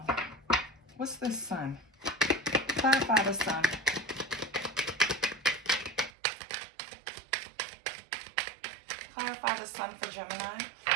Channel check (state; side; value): drops out; left; at 6.1 s